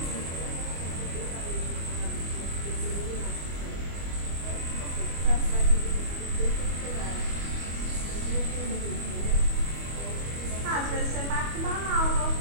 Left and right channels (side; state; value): left; late; 25 ms